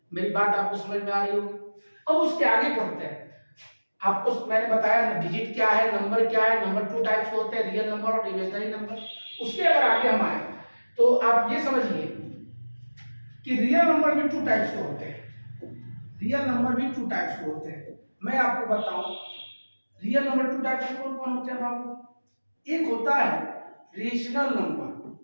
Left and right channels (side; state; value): both; inverted; correlation -1.00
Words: मेरी बात आपको समझ में आ रही होगी। अब उसके आगे पढ़ते हैं। आपको मैंने बताया ना डिजिट क्या है, नंबर क्या है। नंबर 2 टाइप्स के होते हैं, रियल नंबर और इमेजिनरी नंबर। उसके अगर आगे हम आए तो आप ये समझिए कि रियल नंबर भी 2 टाइप्स के होते हैं। रियल नंबर भी 2 टाइप्स के होते हैं। मैं आपको बताऊं रियल नंबर 2 टाइप्स के कौन कौन होते हैं बाबू। एक होता है रेशनल नंबर,